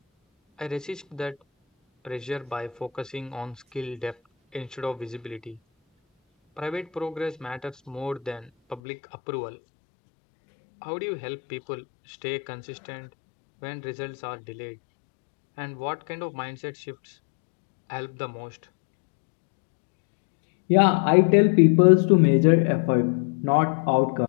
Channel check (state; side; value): drops out; right; at 8.8 s